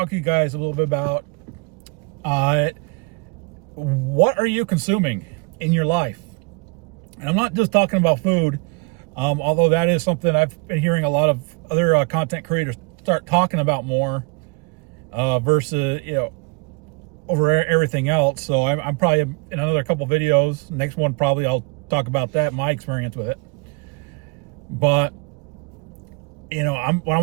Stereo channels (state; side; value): quieter; left; 30.2 dB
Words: to you guys a little bit about, what are you consuming in your life? And I'm not just talking about food, although that is something I've been hearing a lot of other content creators start talking about more, versus, over everything else. So I'm probably in another couple videos. Next one, probably I'll talk about that, my experience with it. But what I